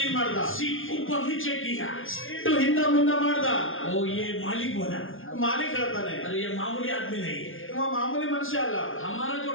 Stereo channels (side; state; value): right; late; 0.58 ms